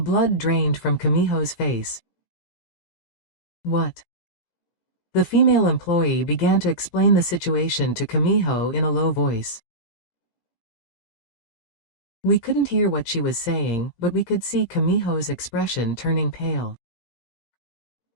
drained from Kamiho's face. What? The female employee began to explain the situation to Kamiho in a low voice. We couldn't hear what she was saying, but we could see Kamiho's expression turning pale.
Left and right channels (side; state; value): right; late; 17 ms